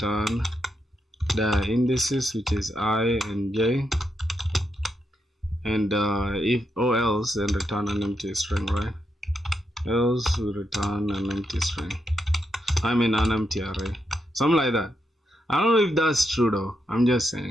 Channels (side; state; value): both; normal; correlation 0.82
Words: the indices, which is I and j, and if or else, then return an empty string, right? Else we return an empty string, I mean an empty array, something like that. I don't know if that's true though, I'm just